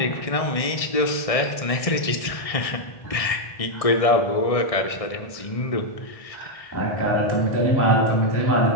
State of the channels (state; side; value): late; right; 1.6 ms